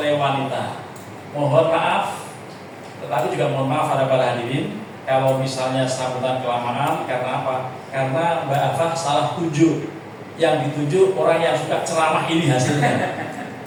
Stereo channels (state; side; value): identical; both; correlation 1.00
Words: wanita. Mohon maaf, tetapi juga mohon maaf pada para hadirin kalau misalnya sambutan kelamaan. Karena apa? Karena Mbak Afah salah tunjuk. Yang ditunjuk orang yang suka ceramah ini hasilnya.